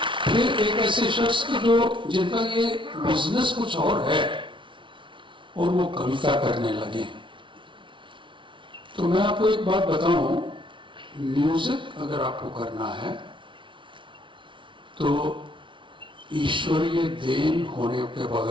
फिर एक ऐसे शख्स के जो जिनका ये बिजनेस कुछ और है और वो कविता करने लगे। तो मैं आपको एक बात बताऊं, म्यूजिक अगर आपको करना है तो ईश्वरीय देन होने के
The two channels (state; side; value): late; left; 0.24 ms